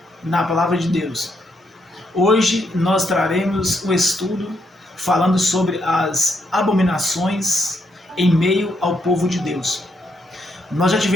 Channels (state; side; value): normal; both; correlation 0.78